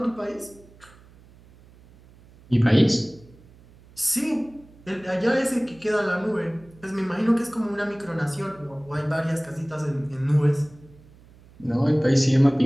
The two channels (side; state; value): right; noise; hum, 25 dB below the sound